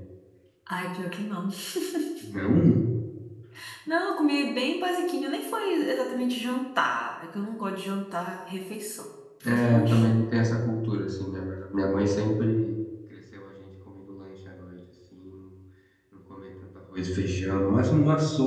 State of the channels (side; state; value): both; identical; correlation 1.00